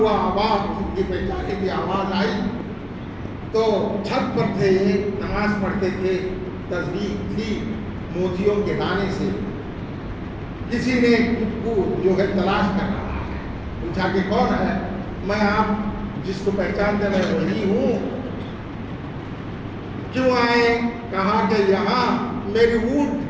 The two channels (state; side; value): identical; both; correlation 1.00